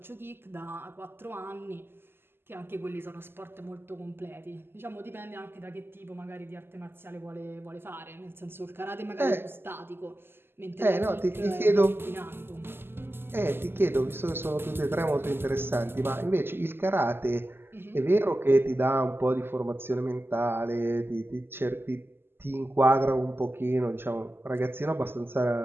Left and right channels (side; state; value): left; late; 0.11 ms